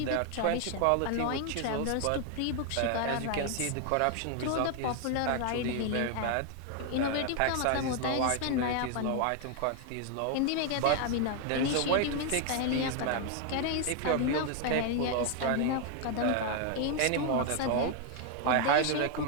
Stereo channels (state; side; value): different; both; correlation 0.00